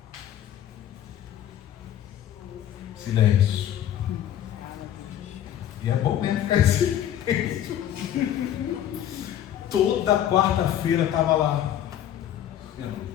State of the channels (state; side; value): quieter; right; 10.9 dB